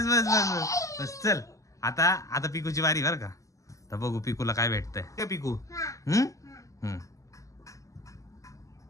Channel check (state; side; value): late; right; 0.16 ms